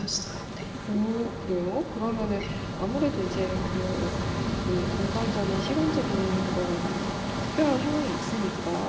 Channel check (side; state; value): both; identical; correlation 1.00